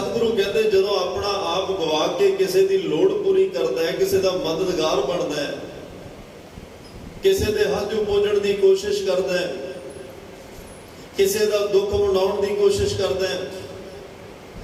ਕਹਿੰਦੇ ਜਦੋਂ ਆਪਣਾ ਆਪ ਗਵਾ ਕੇ ਕਿਸੇ ਦੀ ਲੋੜ ਪੂਰੀ ਕਰਦਾ ਹੈ, ਕਿਸੇ ਦਾ ਮਦਦਗਾਰ ਬਣਦਾ ਹੈ, ਕਿਸੇ ਦੇ ਹੱਥ ਪਹੁੰਚਣ ਦੀ ਕੋਸ਼ਿਸ਼ ਕਰਦਾ ਹੈ, ਕਿਸੇ ਦਾ ਦੁੱਖ ਵੰਡਾਉਣ ਦੀ ਕੋਸ਼ਿਸ਼ ਕਰਦਾ ਹੈ,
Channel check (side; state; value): both; identical; correlation 1.00